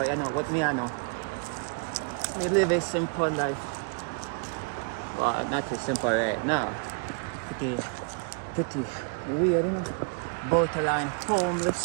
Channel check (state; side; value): quieter; left; 37.5 dB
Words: you know, what me I know. Me live a simple life. Well, not too simple right now. Pretty weird, you know. Borderline